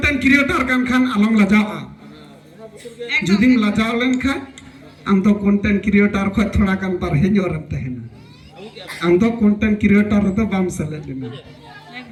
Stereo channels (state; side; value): identical; both; correlation 1.00